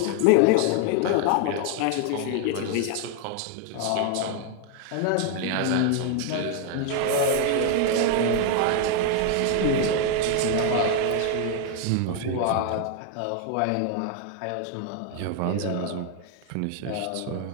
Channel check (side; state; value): both; different; correlation 0.01